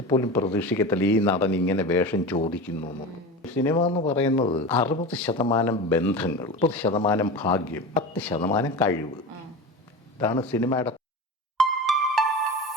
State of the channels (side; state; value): both; normal; correlation 0.29